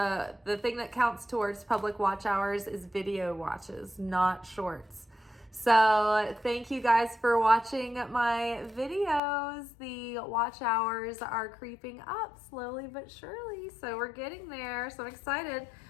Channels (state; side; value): drops out; right; at 9.2 s